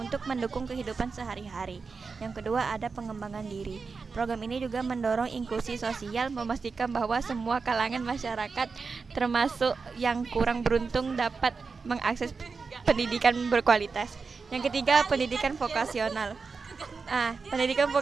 mendukung kehidupan sehari-hari. Yang kedua ada pengembangan diri. Program ini juga mendorong inklusi sosial, memastikan bahwa semua kalangan masyarakat, termasuk yang kurang beruntung, dapat mengakses pendidikan berkualitas. Yang ketiga, pendidikan vokasional. Pendidikan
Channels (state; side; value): quieter; left; 4.8 dB